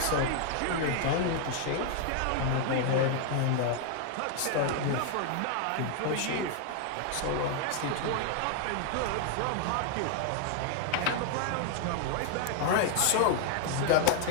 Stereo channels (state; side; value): different; both; correlation 0.00